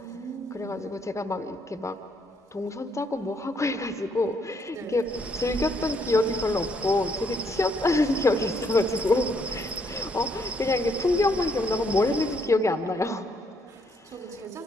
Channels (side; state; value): both; normal; correlation 0.71